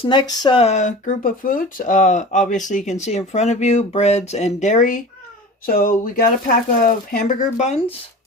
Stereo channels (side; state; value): both; normal; correlation 0.36